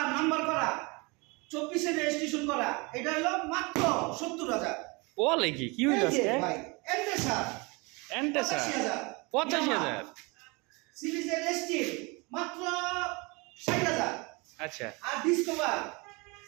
নাম্বার করা, 24 এর রেজিস্ট্রেশন করা, এটা হলো মাত্র 70,000। বলে কি, কি হইল আজকে? ভাই এন্টেসার এন্টেসার 85,000? সিরিজের এসটি মাত্র 60,000। আচ্ছা, আর discover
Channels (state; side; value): quieter; left; 27.4 dB